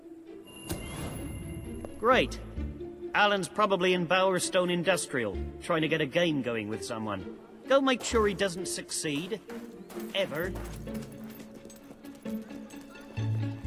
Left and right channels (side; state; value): both; identical; correlation 1.00